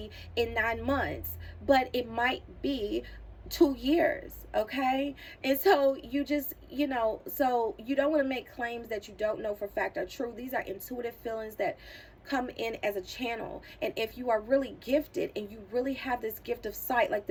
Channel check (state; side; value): identical; both; correlation 1.00